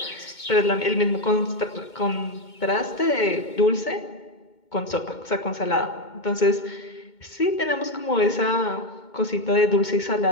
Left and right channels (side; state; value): right; late; 2.2 ms